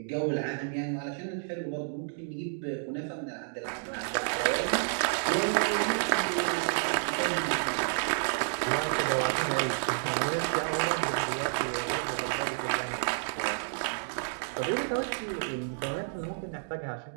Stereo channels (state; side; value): silent; left; digital silence